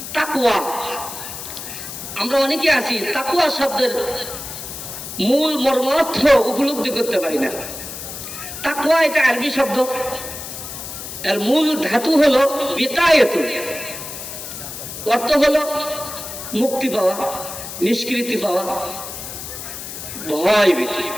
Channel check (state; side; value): noise; left; hiss, 9 dB below the sound